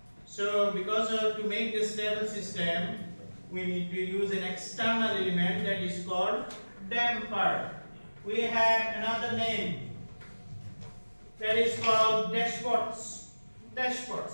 So because to make a stable system, we need to use an external element that is called damper. We have another name that is called dashports.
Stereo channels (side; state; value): both; inverted; correlation -1.00